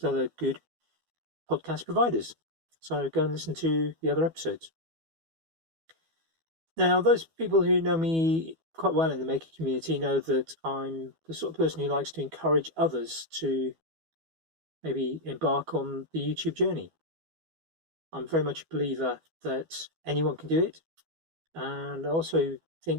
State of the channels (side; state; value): left; late; 12 ms